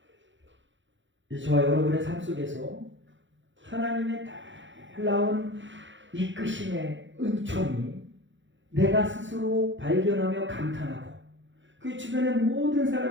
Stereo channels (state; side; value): late; left; 0.54 ms